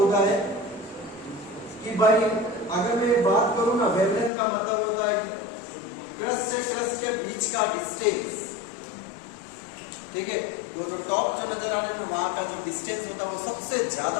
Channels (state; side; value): drops out; right; at 4.3 s